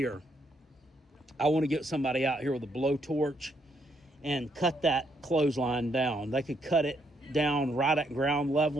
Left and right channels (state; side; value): normal; both; correlation 0.74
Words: I want to get somebody out here with a blowtorch and cut that clothesline down. They could cut it down right at ground